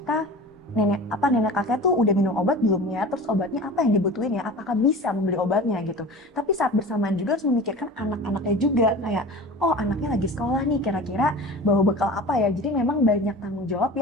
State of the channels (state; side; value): normal; both; correlation 0.37